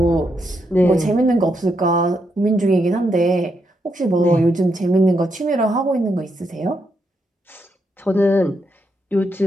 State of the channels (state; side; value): normal; both; correlation 0.80